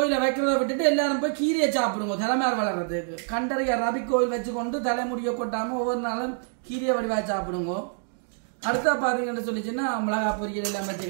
வைக்கிறத விட்டுட்டு எல்லாரும் போய் கீரையை சாப்பிடுங்க. தலைமையார் வளர்றதுக்கு கண்டறிய ரபிக் ஓயில் வச்சுக்கொண்டு தலைமுடிய கொட்டாம ஒவ்வொரு நாளும் கீரையை வடிவா சாப்பிடுங்க. அடுத்த பாத்தீங்கன்னா சொல்லிச்சுன்னா மிளகா பொரியல் எல்லாம் வச்சு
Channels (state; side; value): silent; left; digital silence